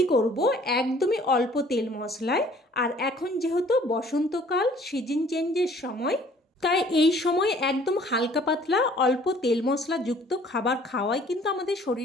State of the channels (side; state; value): both; normal; correlation 0.55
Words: করব একদমই অল্প তেল মশলায়। আর এখন যেহেতু বসন্তকাল, সিজন চেঞ্জের সময়, তাই এই সময় একদম হালকা পাতলা অল্প তেল মশলাযুক্ত খাবার খাওয়াই কিন্তু আমাদের